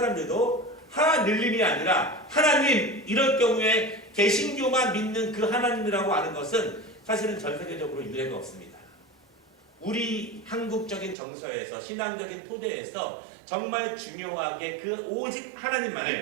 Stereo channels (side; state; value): left; drops out; at 11.2 s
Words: 하늘님이 아니라 하나님 이럴 경우에 개신교만 믿는 그 하나님이라고 하는 것은 사실은 전 세계적으로 유례가 없습니다. 우리 한국적인 정서에서 신앙적인 토대에서 정말 중요하게 그 오직